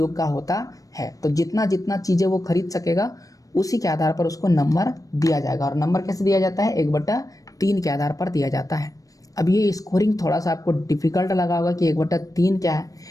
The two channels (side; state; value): right; late; 0.17 ms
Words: का होता है। तो जितना जितना चीज़ें वो खरीद सकेगा उसी के आधार पर उसको नंबर दिया जाएगा। और नंबर कैसे दिया जाता है? 1/3 के आधार पर दिया जाता है। अब ये स्कोरिंग थोड़ा सा आपको डिफिकल्ट लगा होगा कि 1/3 क्या है।